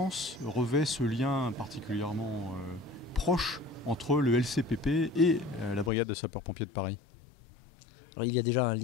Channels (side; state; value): right; drops out; at 5.9 s